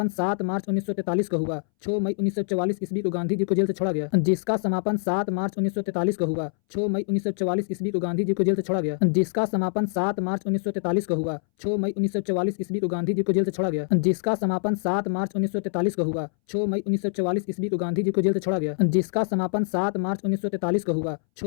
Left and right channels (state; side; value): silent; right; 62 dB below the other